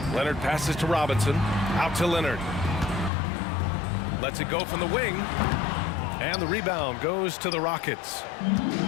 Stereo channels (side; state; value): right; drops out; at 3.1 s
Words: Leonard passes to Robinson, out to Leonard. Lets it go from the wing, and the rebound goes to the Rockets.